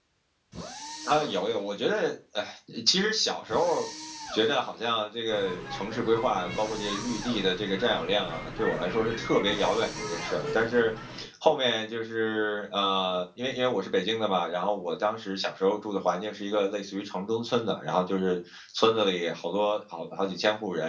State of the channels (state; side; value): identical; both; correlation 1.00